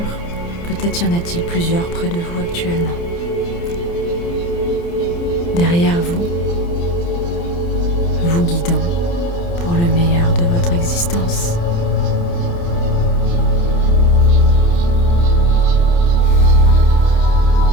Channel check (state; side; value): late; right; 29 ms